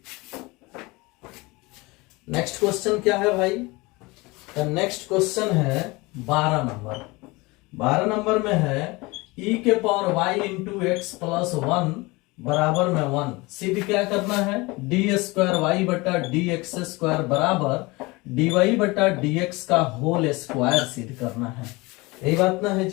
नेक्स्ट क्वेश्चन क्या है भाई? तो नेक्स्ट क्वेश्चन है 12 नंबर। 12 नंबर में है e के power y into x plus 1 बराबर में 1। सिद्ध क्या करना है? डी स्क्वायर वाई बटा डी एक्स स्क्वायर बराबर डी वाई बटा डी एक्स का होल स्क्वायर सिद्ध करना है। यही बात ना है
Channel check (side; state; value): right; quieter; 23.7 dB